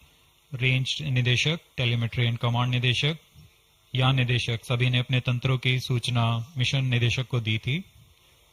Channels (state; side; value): identical; both; correlation 1.00